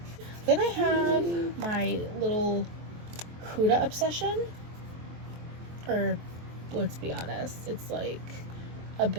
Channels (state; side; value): late; left; 23 ms